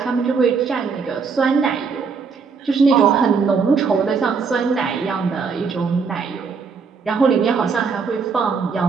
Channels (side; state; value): left; quieter; 5.3 dB